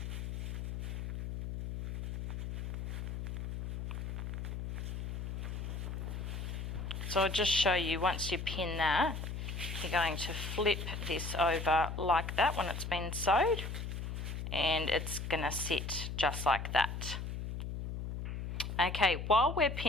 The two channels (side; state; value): left; noise; hum, 5 dB below the sound